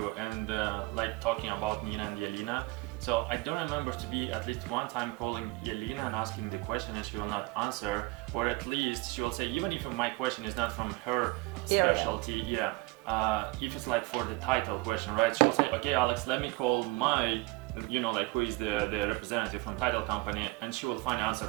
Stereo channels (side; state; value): left; quieter; 23.8 dB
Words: And like talking about Nina and Yelena, so I don't remember to be at least one time calling Yelena and asking the question and she will not answer, or at least she will say, even if my question is not from her specialty, if it's like for the title question, right? She'll say, okay, Alex, let me call my, who is the representative from title company, and she will find answer